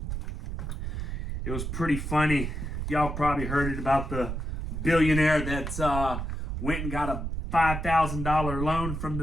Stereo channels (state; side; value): noise; right; rumble, 4 dB below the sound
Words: It was pretty funny. Y'all probably heard it about the billionaire that went and got a $5,000 loan from